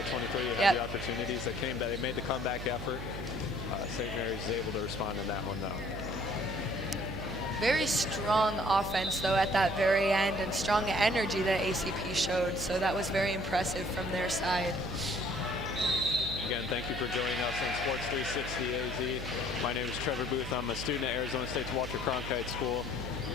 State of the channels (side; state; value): right; noise; hum, 7 dB below the sound